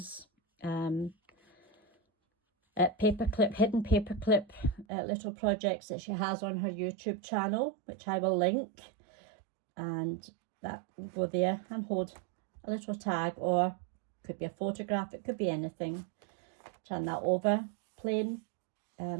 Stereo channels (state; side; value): drops out; left; at 4.9 s